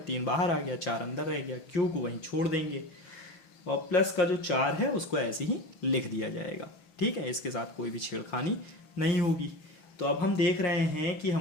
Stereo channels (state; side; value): late; right; 5.7 ms